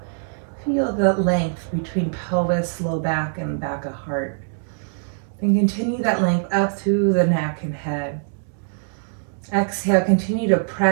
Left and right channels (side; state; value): left; silent; digital silence